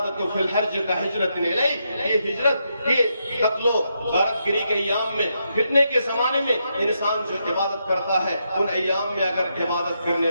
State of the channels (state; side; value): inverted; both; correlation -0.81